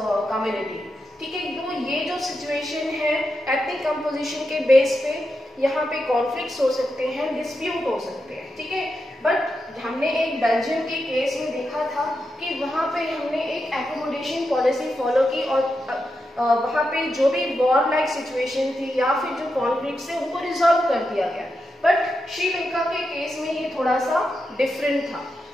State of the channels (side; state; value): both; normal; correlation 0.87